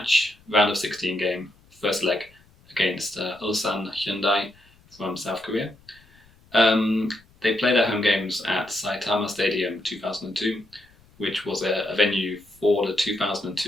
round of 16 game, first leg against Ulsan Hyundai from South Korea. They play their home games at Saitama Stadium 2002, which was a venue for the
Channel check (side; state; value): left; noise; rumble, 29 dB below the sound